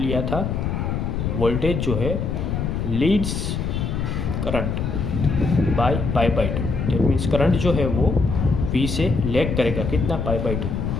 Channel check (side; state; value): left; noise; rumble, 1 dB below the sound